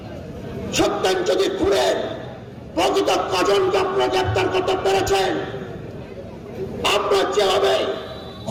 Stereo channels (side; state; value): both; identical; correlation 1.00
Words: সত্যেন চৌধুরী খুনের প্রকৃত কজনকে আপনারা গ্রেপ্তার করতে পেরেছেন? আপনার যেভাবে